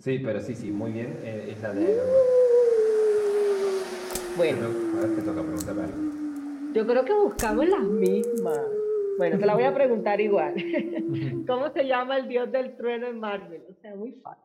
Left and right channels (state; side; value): identical; both; correlation 1.00